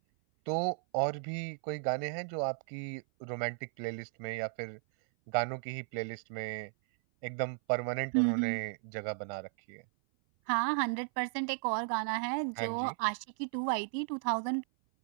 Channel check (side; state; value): left; silent; 54 dB below the other